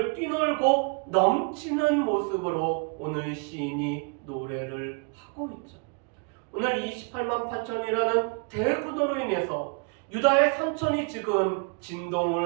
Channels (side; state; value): left; quieter; 36.3 dB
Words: 뛰놀고 넘치는 모습으로 오늘 시인이 노래를 하고 있죠. 오늘 이 28만 8천이라는 대구도로 인해서 유다의 산천이 지금